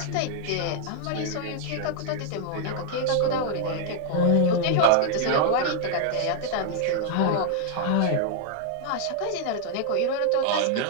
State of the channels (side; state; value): both; different; correlation -0.01